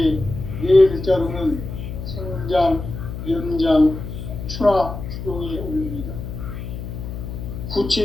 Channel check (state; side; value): noise; left; hum, 8 dB below the sound